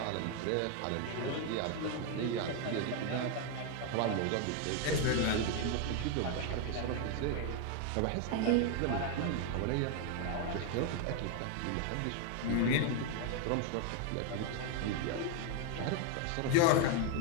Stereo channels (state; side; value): different; both; correlation 0.01